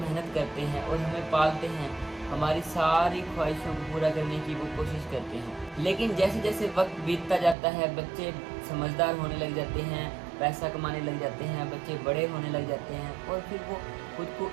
करते हैं और हमें पालते हैं, हमारी सारी ख्वाहिशों को पूरा करने की वो कोशिश करते हैं। लेकिन जैसे जैसे वक्त बीतता जाता है, बच्चे समझदार होने लग जाते हैं, पैसा कमाने लग जाते हैं, बच्चे बड़े होने लग जाते हैं और फिर वो खुद को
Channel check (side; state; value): left; drops out; at 7.6 s